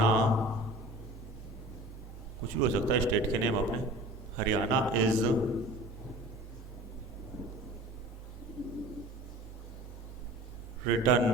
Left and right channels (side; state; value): both; normal; correlation 0.41